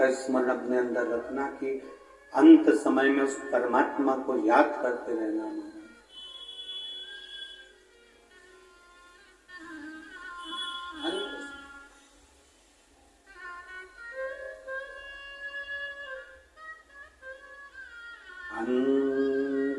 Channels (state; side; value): identical; both; correlation 1.00